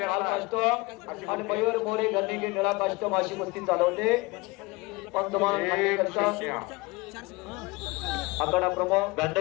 लाल कास्टो आणि मयूर मोरे गन्नीगे निळा कास्टो अशी कुस्ती चालवते। पंतमान आकडा प्रमुख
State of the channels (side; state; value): right; quieter; 23.6 dB